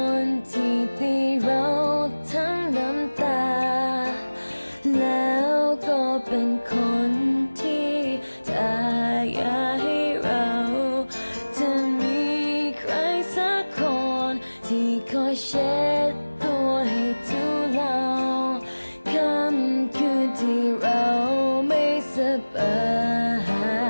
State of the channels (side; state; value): both; inverted; correlation -1.00